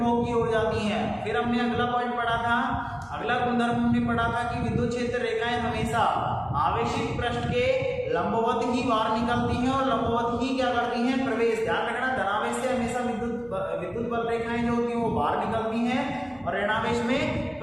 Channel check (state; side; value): noise; left; hum, 27 dB below the sound